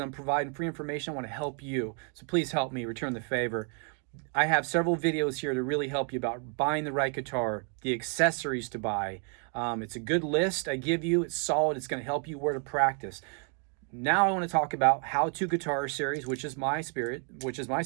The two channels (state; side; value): quieter; left; 39.2 dB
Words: providing free information. I want to help you. So please help me return the favor. I have several videos here to really help you about buying the right guitar, the accessories to buy. It's a good list I give you. It's solid. It's going to help you where to practice. Now I want to talk about How to Guitar series, which is my